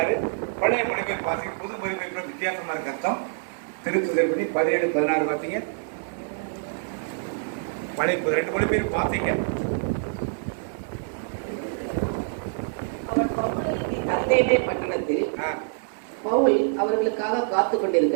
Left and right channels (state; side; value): silent; left; digital silence